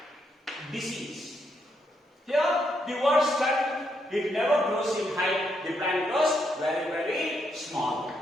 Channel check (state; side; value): normal; both; correlation 0.78